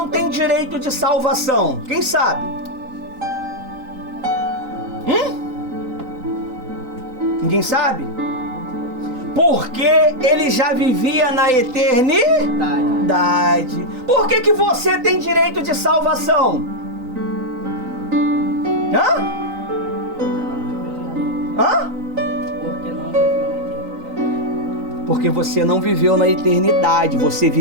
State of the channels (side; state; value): left; late; 3.9 ms